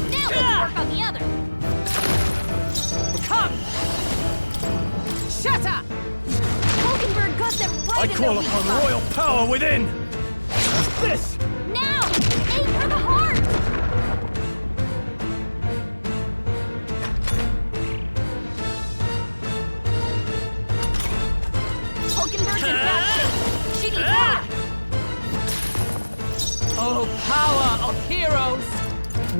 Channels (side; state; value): both; inverted; correlation -1.00